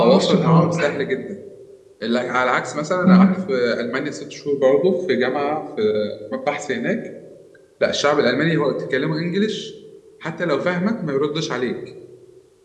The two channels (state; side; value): identical; both; correlation 1.00